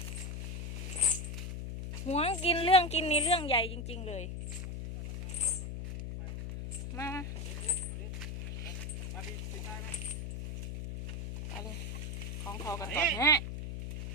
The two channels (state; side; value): noise; left; hum, 5 dB below the sound